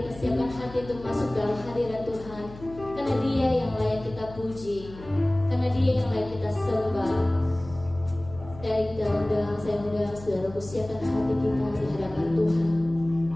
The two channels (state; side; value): noise; left; hum, 17 dB below the sound